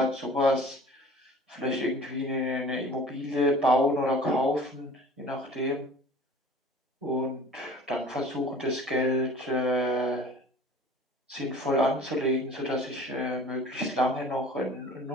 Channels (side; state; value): both; normal; correlation 0.45